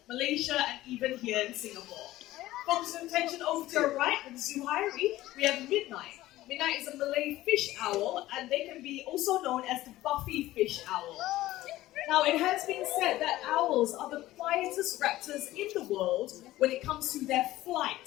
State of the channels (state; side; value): quieter; right; 16.1 dB